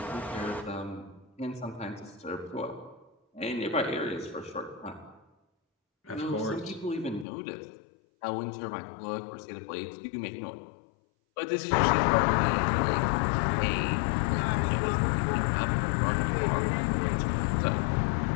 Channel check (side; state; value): right; drops out; at 7.2 s